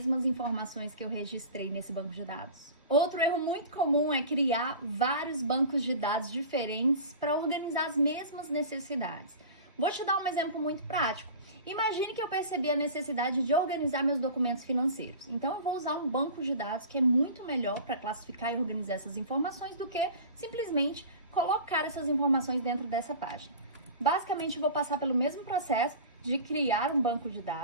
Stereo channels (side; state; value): both; inverted; correlation -0.37